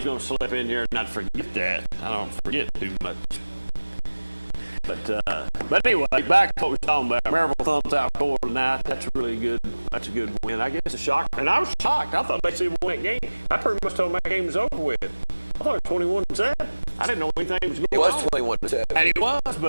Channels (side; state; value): both; inverted; correlation -1.00